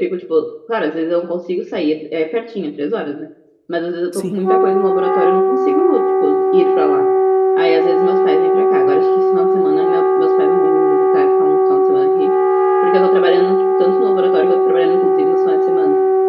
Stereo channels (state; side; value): identical; both; correlation 1.00